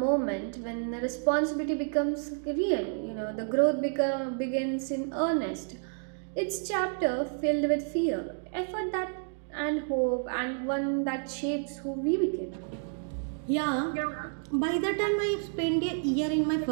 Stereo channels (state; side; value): silent; left; 58 dB below the other